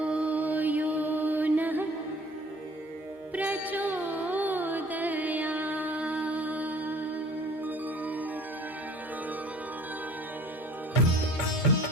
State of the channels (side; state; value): both; normal; correlation 0.51